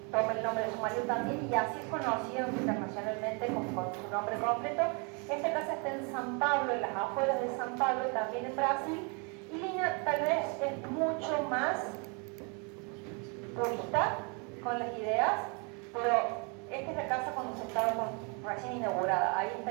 toma el nombre de su marido también y así es conocido internacionalmente con su nombre completo. Esta casa está en San Pablo, en las afueras de San Pablo, también en Brasil, y Lina tal vez es mucho más purista con las ideas, pero esta es la casa cuando se estaba recién inaugurada. Ahí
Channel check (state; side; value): quieter; left; 34.4 dB